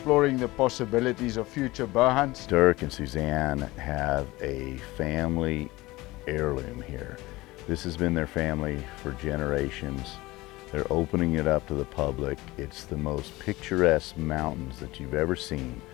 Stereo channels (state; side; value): quieter; right; 20.1 dB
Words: the possibilities of future bow hunts. Dirk and Suzanne have a family heirloom here. This has been their family for generations. They're opening it up to the public. It's the most picturesque mountains that you've ever seen,